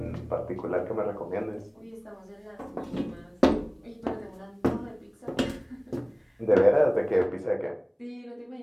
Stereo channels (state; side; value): identical; both; correlation 1.00